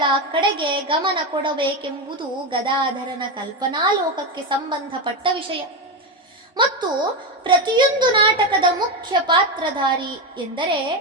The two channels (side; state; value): both; normal; correlation 0.12